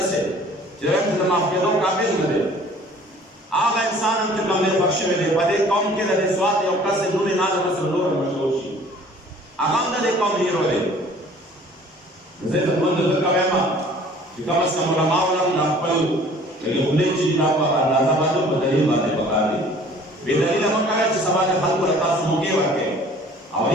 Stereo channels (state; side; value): normal; both; correlation 0.51